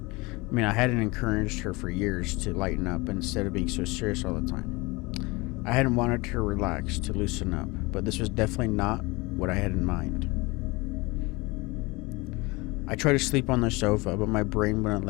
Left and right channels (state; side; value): quieter; right; 24.3 dB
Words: I mean, I hadn't encouraged her for years to lighten up instead of being so serious all the time. I hadn't wanted her to relax, to loosen up, but this was definitely not what I had in mind. I tried to sleep on the sofa, but my brain wouldn't